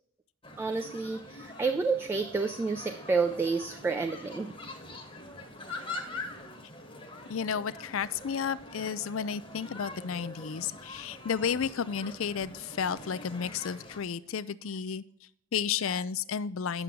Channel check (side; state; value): both; normal; correlation 0.32